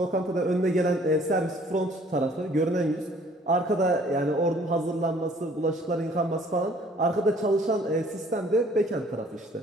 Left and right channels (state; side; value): normal; both; correlation 0.57